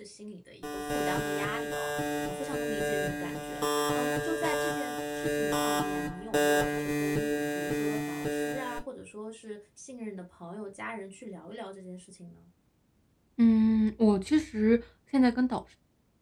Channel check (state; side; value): identical; both; correlation 1.00